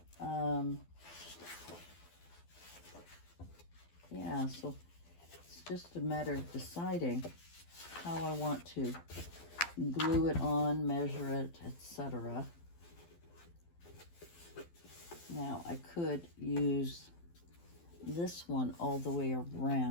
Yeah, so it's just a matter of deciding how I want to glue it on, measure it, etc. Now, I could use this one all the way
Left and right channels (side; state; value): right; late; 12 ms